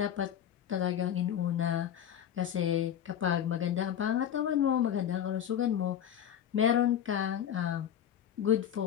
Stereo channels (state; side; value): quieter; right; 9.7 dB